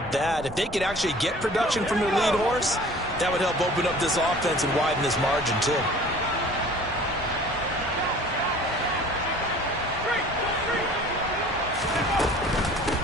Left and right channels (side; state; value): both; normal; correlation 0.47